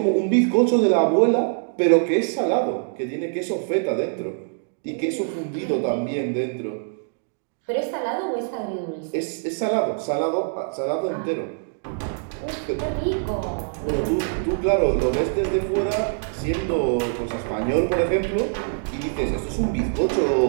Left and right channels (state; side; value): silent; left; digital silence